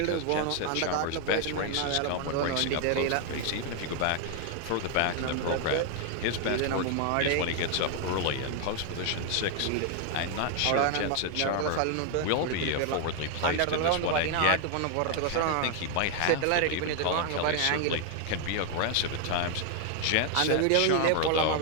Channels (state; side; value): different; both; correlation 0.00